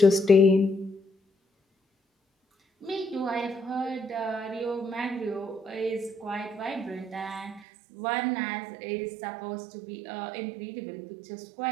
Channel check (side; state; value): left; drops out; at 7.6 s